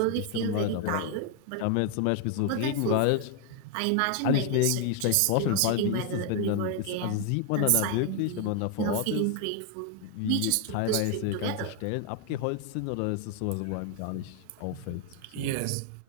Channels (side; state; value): both; different; correlation 0.00